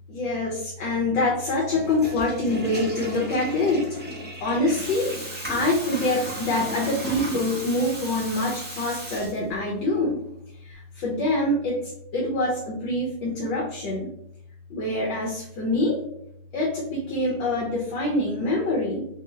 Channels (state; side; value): normal; both; correlation 0.01